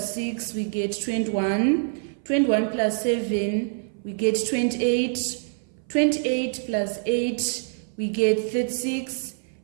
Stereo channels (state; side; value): silent; left; 59 dB below the other